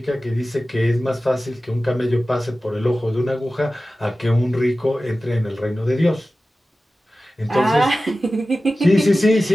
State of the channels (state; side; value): normal; both; correlation 0.95